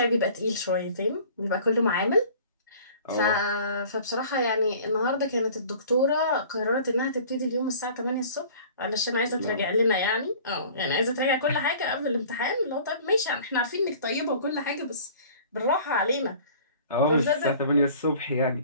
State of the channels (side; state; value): both; inverted; correlation -0.47